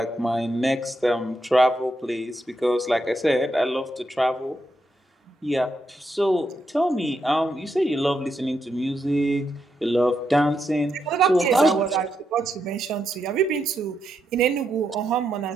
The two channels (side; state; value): both; normal; correlation 0.82